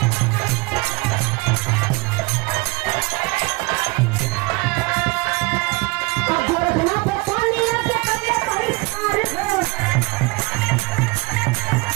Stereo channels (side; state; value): left; quieter; 25.9 dB